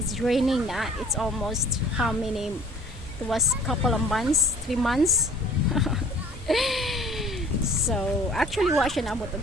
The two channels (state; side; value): normal; both; correlation 0.51